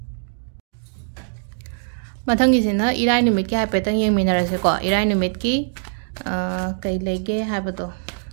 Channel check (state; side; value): silent; left; digital silence